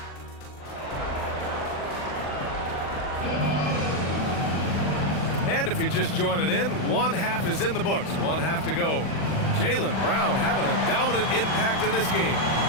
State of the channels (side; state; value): right; late; 40 ms